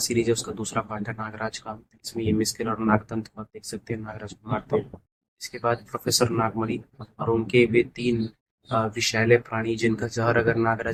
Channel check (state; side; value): identical; both; correlation 1.00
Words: है उसका दूसरा पार्ट है नागराज का। इसमें ये मिस्किल और नागदंत को आप देख सकते हैं, नागराज को मारते हैं। इसके बाद प्रोफेसर नागमणि और उनके वे तीन विषैले प्राणी, जिनका जहर अगर